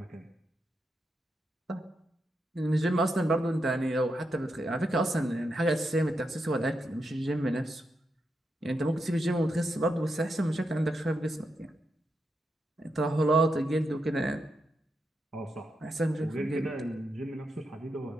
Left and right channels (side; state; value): both; normal; correlation 0.84